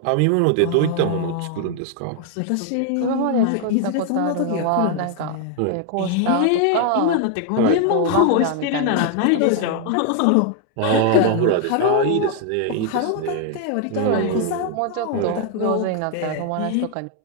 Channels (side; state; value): both; different; correlation 0.00